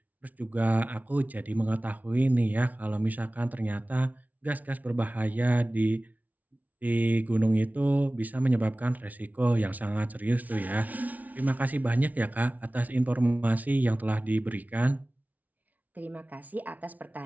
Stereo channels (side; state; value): left; late; 0.074 ms